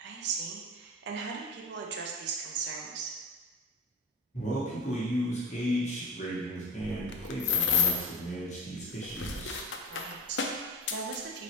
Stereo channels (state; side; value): normal; both; correlation 0.30